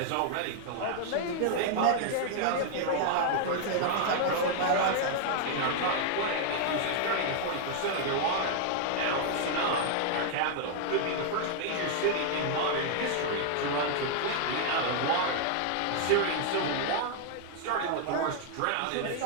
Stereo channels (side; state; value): both; different; correlation 0.00